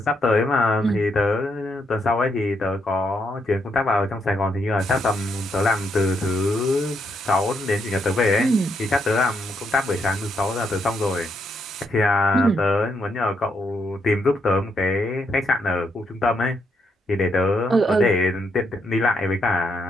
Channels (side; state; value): both; normal; correlation 0.77